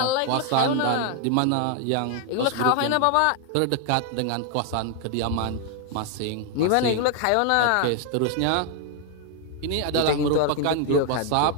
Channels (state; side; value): different; both; correlation 0.00